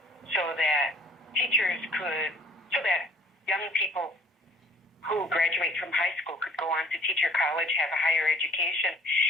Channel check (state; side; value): normal; both; correlation 0.55